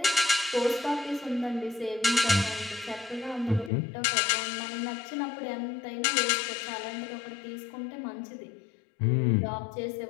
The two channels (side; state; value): right; drops out; at 3.7 s